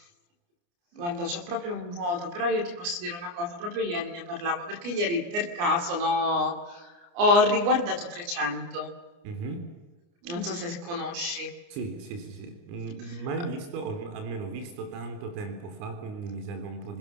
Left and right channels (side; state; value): left; late; 29 ms